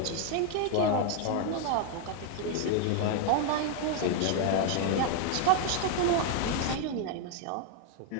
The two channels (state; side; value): different; both; correlation 0.01